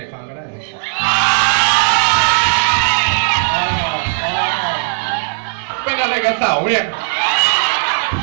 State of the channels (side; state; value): left; silent; 61 dB below the other